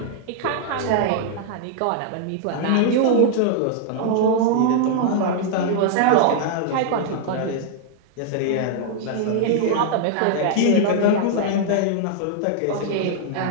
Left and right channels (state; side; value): different; both; correlation -0.01